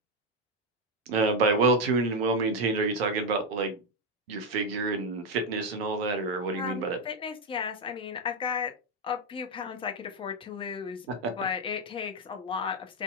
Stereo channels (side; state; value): both; normal; correlation 0.05